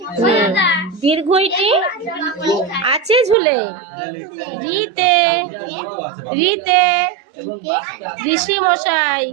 দীর্ঘইটি আছে ঝুলে, রিতে রিতে ঋষি মশাই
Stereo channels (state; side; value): drops out; left; at 3.4 s